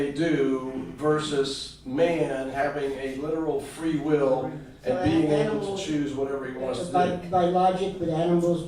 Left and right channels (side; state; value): both; identical; correlation 1.00